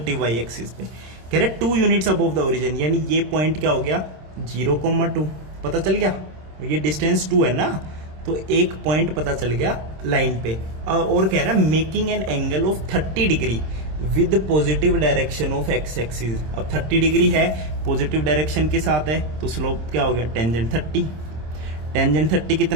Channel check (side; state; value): left; late; 26 ms